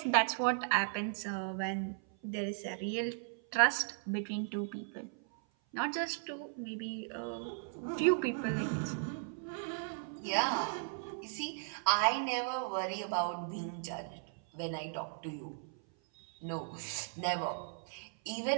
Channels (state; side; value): silent; left; 53 dB below the other